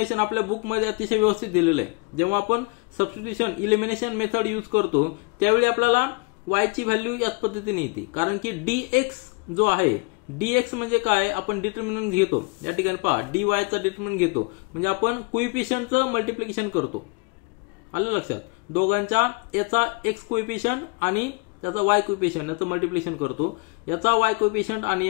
आपल्या बुकमध्ये अतिशय व्यवस्थित दिलेलं आहे. जेव्हा आपण सबस्टिट्यूशन इलिमिनेशन मेथड यूज करतो त्यावेळी आपल्याला y ची व्हॅल्यू याच पद्धतीने येते, कारण की dx जो आहे dx म्हणजे काय, आपण डिटर्मिनंट घेतो. या ठिकाणी पहा dy चा डिटर्मिनंट घेतो म्हणजे आपण कोइफिशियंटचं मल्टिप्लिकेशन करतो. आलं लक्षात. दोघांच्या याचा x कोइफिशियंट आणि त्याचा y कोइफिशियंट याचं मल्टिप्लिकेशन करतो, याचा y कोइफिशियंट आणि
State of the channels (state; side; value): quieter; right; 31.4 dB